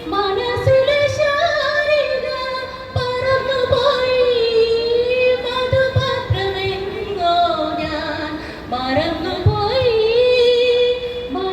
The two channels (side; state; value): both; identical; correlation 1.00